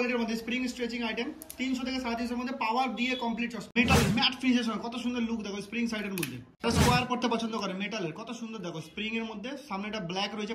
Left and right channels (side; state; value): both; identical; correlation 1.00